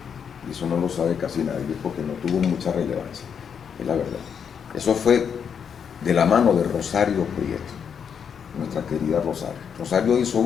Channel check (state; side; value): quieter; right; 7.3 dB